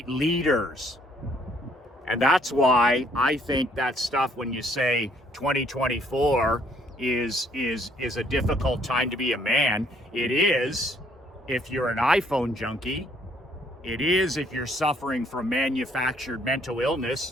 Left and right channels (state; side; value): normal; both; correlation 0.65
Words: leaders. And that's why I think that stuff, when you say 2024 is a difficult time to be a man, it is if you're an iPhone junkie. It is if you're suffering from manufactured mental